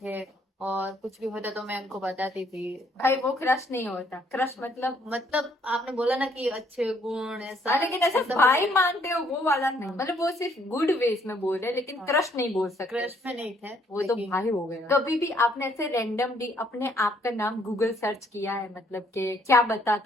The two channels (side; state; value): both; normal; correlation 0.67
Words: और कुछ भी होता तो मैं उनको बताती थी। भाई वो क्रश नहीं होता, क्रश मतलब आपने बोला ना कि अच्छे गुण ऐसा, हाँ, लेकिन ऐसा भाई मानते हो वो वाला नहीं, मतलब वो सिर्फ गुड वेज में बोल रहे, लेकिन हाँ। क्रश नहीं बोल सकते। क्रश में नहीं थे, वो तो लेकिन भाई हो गया। कभी भी आपने ऐसे रैंडमली अपने आप का नाम गूगल सर्च किया है, मतलब कि क्या